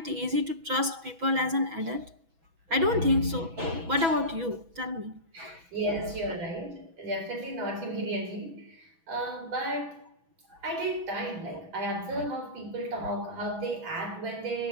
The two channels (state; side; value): late; left; 6.1 ms